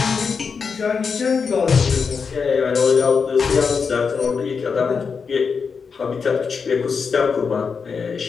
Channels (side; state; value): right; quieter; 5.6 dB